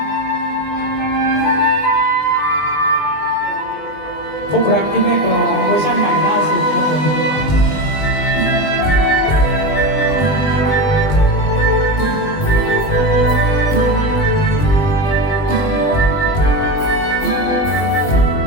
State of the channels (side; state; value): right; late; 20 ms